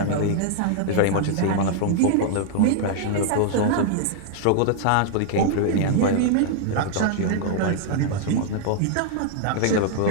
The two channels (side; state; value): both; different; correlation -0.01